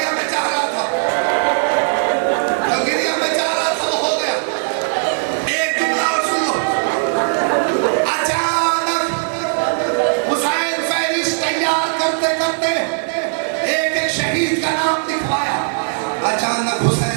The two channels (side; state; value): left; silent; digital silence